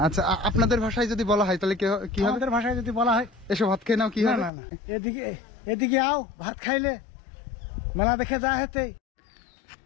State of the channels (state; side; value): drops out; right; at 4.5 s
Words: আচ্ছা, আপনাদের ভাষায় যদি বলা হয় তাহলে কি হবে? আমাদের ভাষায় যদি বলা হয় এসব ভাত খেয়ে নাও, কি না হবে? না না, এদিকে আও, ভাত খাইলে মেলা দেখে যা হেতে।